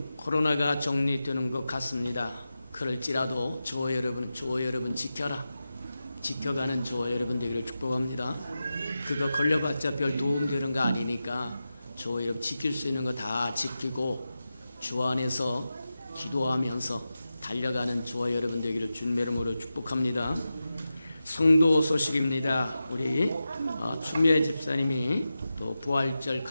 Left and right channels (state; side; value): inverted; both; correlation -0.92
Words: 코로나가 정리되는 것 같습니다. 그럴지라도 저와 여러분 지켜가는 저와 여러분 되기를 축복합니다. 그거 걸려봤자 별 도움되는 거 아니니까 저와 여러분 지킬 수 있는 거 다 지키고 주 안에서 기도하면서 달려가는 저와 여러분 되기를 주님의 이름으로 축복합니다. 성도 소식입니다. 우리 추미애 집사님이 또 부활절